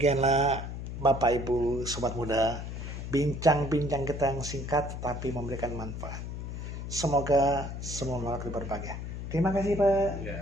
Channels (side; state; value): left; noise; hum, 7 dB below the sound